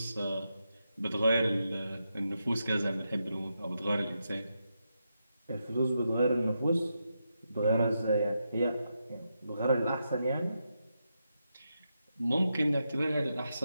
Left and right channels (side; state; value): both; inverted; correlation -0.85